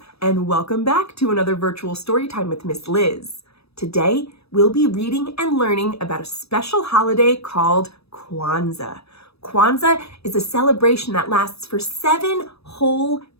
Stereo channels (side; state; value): right; late; 0.78 ms